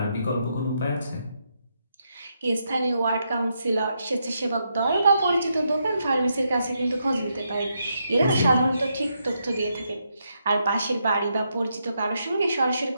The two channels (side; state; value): both; inverted; correlation -0.80